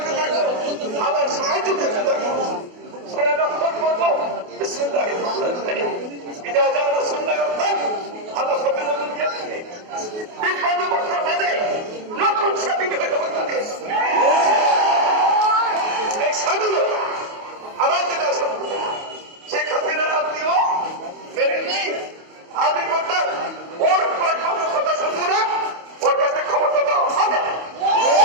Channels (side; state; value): left; late; 28 ms